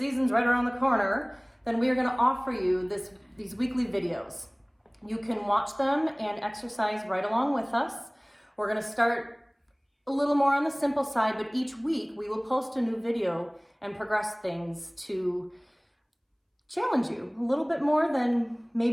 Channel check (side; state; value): both; identical; correlation 1.00